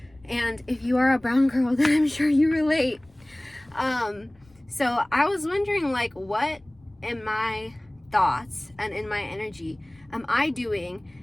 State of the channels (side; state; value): left; noise; rumble, 29 dB below the sound